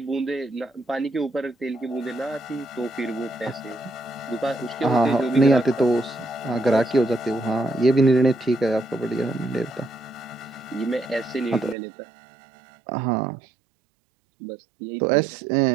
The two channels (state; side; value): drops out; left; at 11.8 s